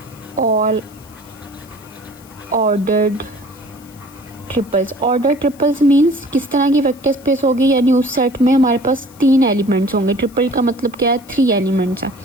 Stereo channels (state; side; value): noise; left; hiss, 25 dB below the sound